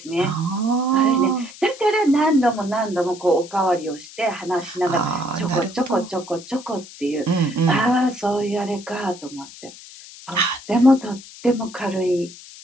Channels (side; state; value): left; noise; hiss, 17 dB below the sound